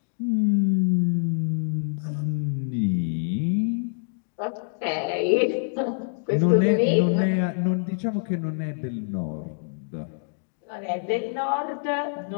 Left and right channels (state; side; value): silent; right; digital silence